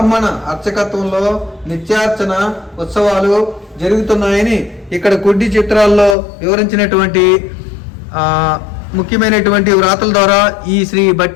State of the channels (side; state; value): right; drops out; at 6.2 s